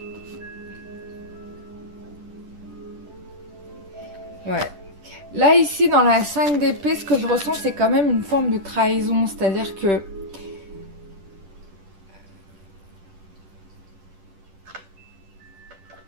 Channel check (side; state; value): left; late; 10 ms